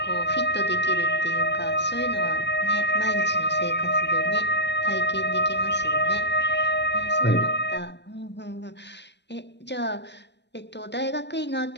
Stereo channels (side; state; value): right; late; 0.50 ms